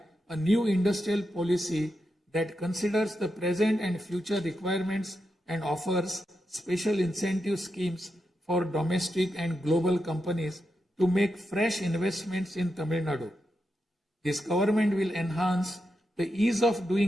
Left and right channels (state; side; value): normal; both; correlation 0.86